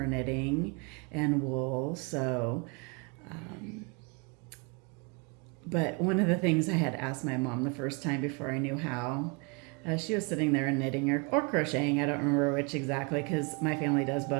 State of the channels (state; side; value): quieter; left; 31.5 dB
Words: knitting and wool. So, but one of the things I had asked my mom the first time before I knew how, she was sitting there and knitting or crocheting. I don't remember which exactly because my family does